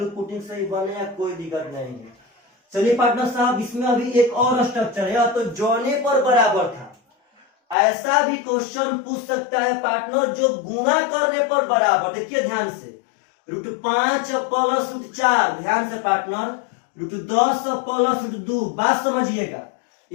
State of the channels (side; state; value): right; drops out; at 7.8 s